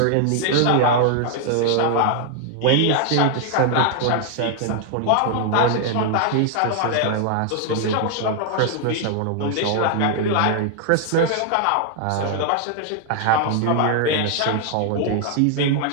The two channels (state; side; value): different; both; correlation 0.00